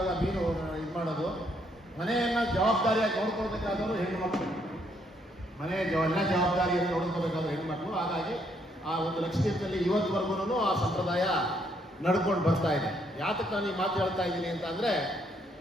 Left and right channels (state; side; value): normal; both; correlation 0.72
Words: ಮೀನು ಇದು ಮಾಡೋದು. ಮನೆಯನ್ನ ಜವಾಬ್ದಾರಿಯಾಗಿ ನೋಡ್ಕೊಳ್ಬೇಕಾದವರು ಹೆಣ್ಣು ಮಕ್ಕಳು, ಮನೆಯ ಎಲ್ಲ ಜವಾಬ್ದಾರಿಯನ್ನು ನೋಡ್ಕೋಬೇಕಾದ್ರು ಹೆಣ್ಮಕ್ಳು. ಹಾಗಾಗಿ ಆ ಒಂದು ಲಕ್ಷದ್ವೀಪದಲ್ಲಿ ಇವತ್ತುವರೆಗೂ ಆ ಸಂಪ್ರದಾಯ ನಡ್ಕೊಂಡು ಬರ್ತಾ ಇದೆ. ಯಾತಕ್ಕೆ ನಾನು ಈ ಮಾತು ಹೇಳ್ತಾ ಇದ್ದೀನಿ ಅಂತ ಅಂದ್ರೆ,